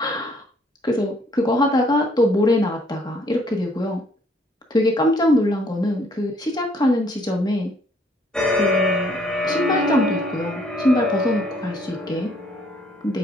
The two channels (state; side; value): normal; both; correlation 0.64